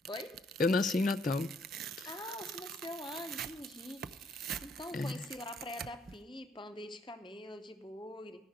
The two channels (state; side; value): normal; both; correlation 0.68